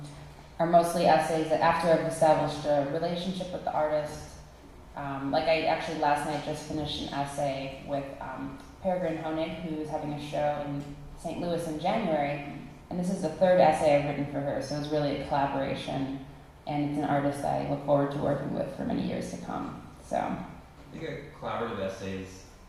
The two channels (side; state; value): both; identical; correlation 1.00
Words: mostly essays that after I've established a relationship with the artist. Like I actually last night just finished an essay with Peregrine Honig, who's having a show in St. Louis in January, and this is the 3rd essay I've written for her, so it's really a collaboration, and it's an artist that I look forward to working with for many years to come. So I think a collaborative essays,